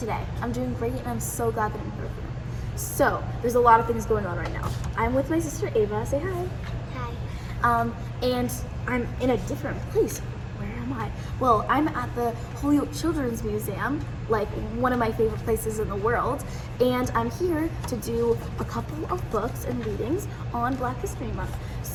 I'm doing great and I'm so glad that I'm here with you. So, there's a lot of things going on right now. I'm with my sister Ava, say hi. Hi. And I'm in a different place. Where am I? Well, I'm at the Holyoke Children's Museum, like one of my favorite places in the world, and I'm here to do a couple of books and readings on Black History Month.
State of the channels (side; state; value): both; identical; correlation 1.00